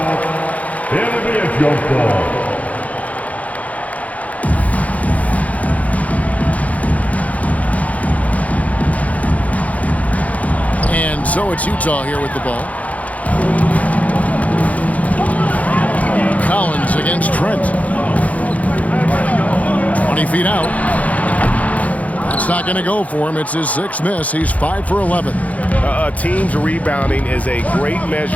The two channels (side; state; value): right; late; 0.070 ms